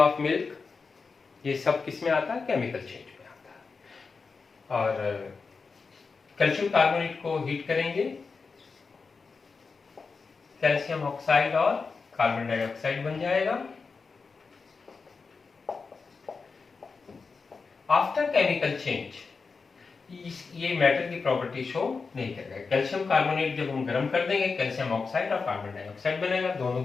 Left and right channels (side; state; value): right; quieter; 4.7 dB